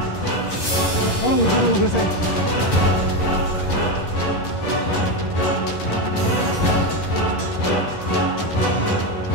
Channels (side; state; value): right; late; 11 ms